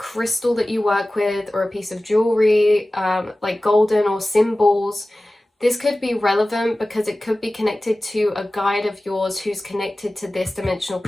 that you work with, or a piece of jewelry, like golden or symbols. This could be relevant because it could be connected to a guide of yours who's connected to this dimensional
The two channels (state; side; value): normal; both; correlation 0.97